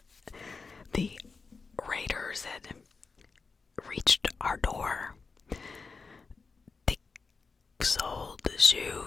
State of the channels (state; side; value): quieter; right; 4.6 dB